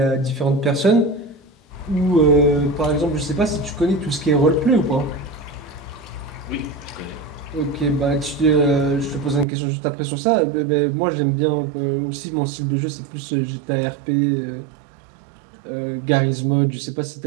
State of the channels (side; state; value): left; drops out; at 9.5 s